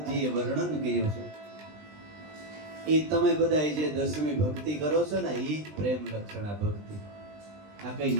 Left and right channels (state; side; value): late; left; 20 ms